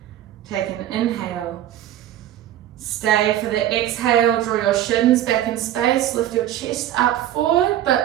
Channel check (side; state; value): left; quieter; 12.3 dB